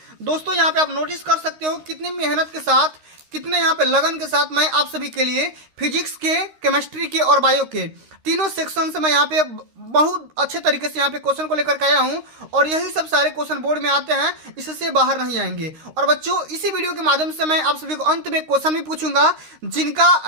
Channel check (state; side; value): late; left; 13 ms